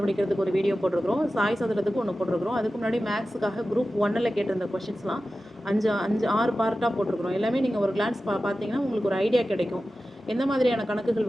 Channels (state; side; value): normal; both; correlation 0.94